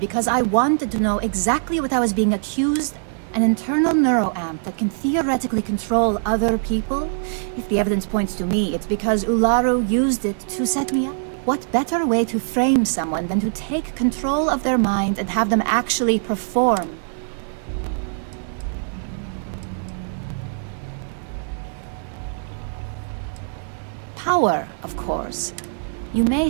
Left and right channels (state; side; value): silent; left; 58 dB below the other